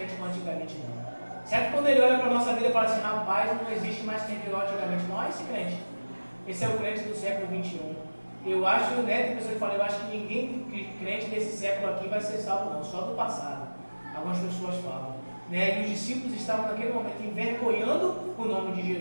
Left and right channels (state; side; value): inverted; both; correlation -1.00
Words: como antigamente não? Será que quando ele olha para a nossa vida e fala assim: rapaz, não existe mais crente igual antigamente? Não é esse crente. Esse é o crente do século 21. Eu acho, né, tem pessoas que falam: eu acho que ninguém crente desse século aqui vai ser salvo não, só do passado. Algumas pessoas falam. né? E os discípulos estavam naquele momento envergonhando o nome de